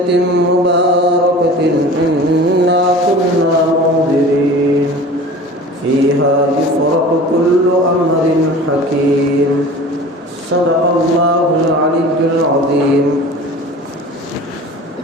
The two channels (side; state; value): both; normal; correlation 0.39